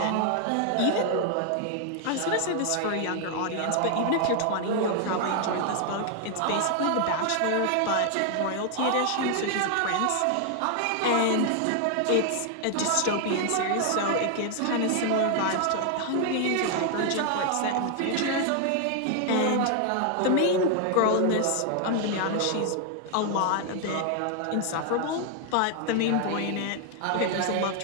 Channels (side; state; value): both; different; correlation 0.00